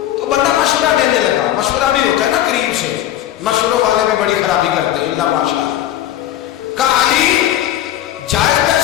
تو بندہ مشورہ دینے لگا. مشورہ بھی ہوتا ہے نا قریب سے, مشوروں والے بھی بڑی خرابی کرتے ہیں اللہ ماشاء اللہ. کہا علی جائز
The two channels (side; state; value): right; quieter; 12.7 dB